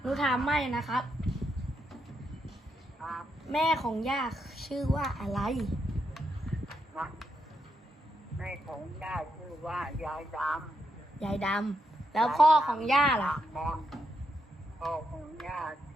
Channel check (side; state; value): both; normal; correlation 0.81